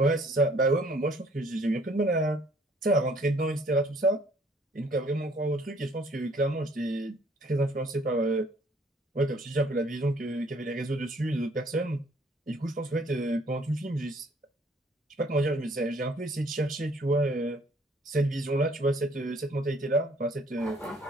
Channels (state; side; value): normal; both; correlation 0.61